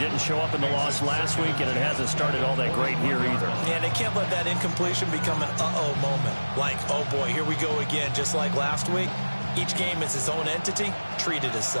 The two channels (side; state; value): both; inverted; correlation -1.00